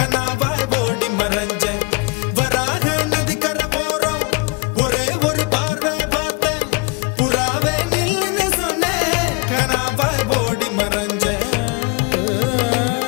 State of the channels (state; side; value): quieter; right; 29.2 dB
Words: ஓடி மறைஞ்சேன் வராக நதிக்கரை போறோம் ஒரே ஒரு பார்வை பார்த்தேன் புறாவே நில்லுன்னு சொன்னேன் கனாவாய் ஓடி மறைஞ்சேன்